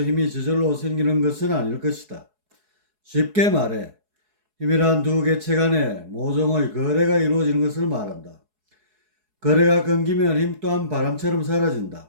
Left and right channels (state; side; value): late; left; 4.7 ms